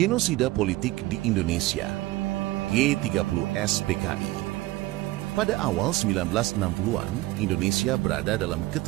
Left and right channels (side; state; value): left; quieter; 18.5 dB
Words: politik di Indonesia, G30S PKI. Pada awal 1960-an, Indonesia berada dalam